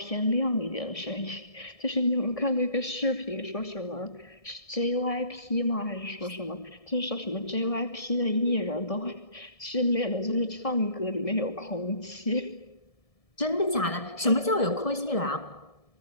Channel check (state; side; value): late; right; 1.7 ms